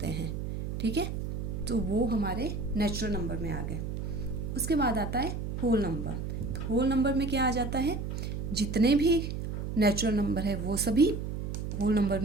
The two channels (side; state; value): right; noise; hum, 4 dB below the sound